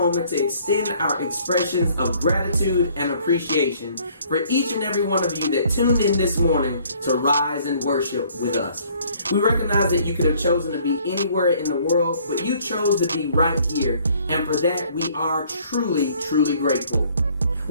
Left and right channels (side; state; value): both; inverted; correlation -0.59